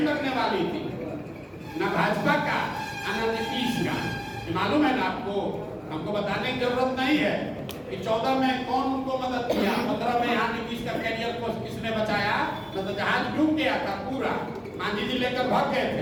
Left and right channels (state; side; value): identical; both; correlation 1.00